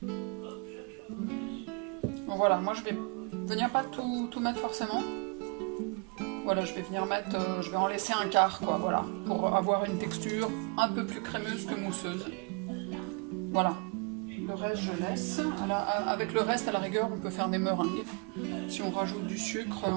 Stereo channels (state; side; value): quieter; left; 33.0 dB